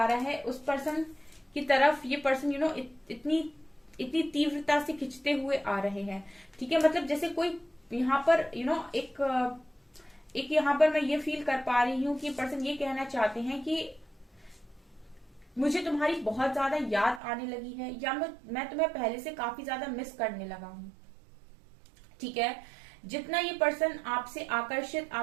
रहा है उस पर्सन की तरफ ये पर्सन इतनी तीव्रता से खिंचते हुए आ रहे हैं, ठीक है। मतलब जैसे कोई यहाँ पर एक यहाँ पर मैं ये फील कर पा रही हूँ कि पर्सन ये कहना चाहते हैं कि मुझे तुम्हारी बहुत ज्यादा याद आने लगी है, या मैं तुम्हें पहले से काफी ज्यादा मिस करने लगा हूं, ठीक है। जितना ये पर्सन आपसे आकर्षित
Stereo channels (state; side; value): drops out; left; at 17.2 s